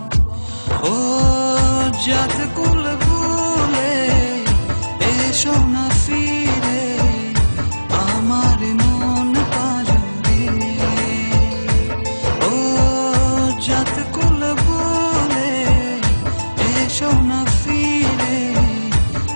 ও জাত কুল ভুলে এসো না ফিরে আমার মন পাজরে। ও জাত কুল ভুলে এসো না ফিরে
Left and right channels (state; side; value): inverted; both; correlation -1.00